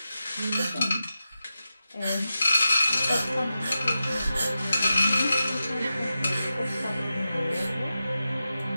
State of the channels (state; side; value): inverted; both; correlation -0.91